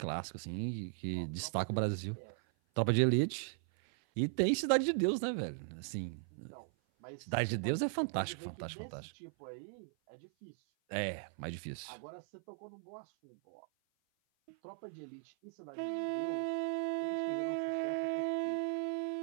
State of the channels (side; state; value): left; silent; 53 dB below the other